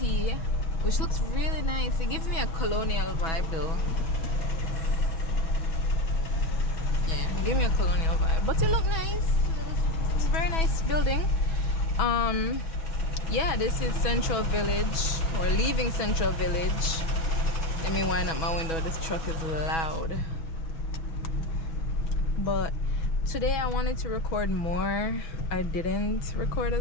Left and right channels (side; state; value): right; late; 6.2 ms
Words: which looks really nice. It gives me a colonial vibe though. Yeah, it gave me a colonial vibe, but it looked nice. It's a very nice building. Yeah, this is Central Village. We're leaving Central Village. Let me wind up my window. This truck is loud. But today I wanted to record more. I didn't record